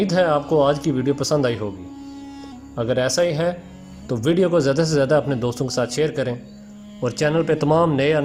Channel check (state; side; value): identical; both; correlation 1.00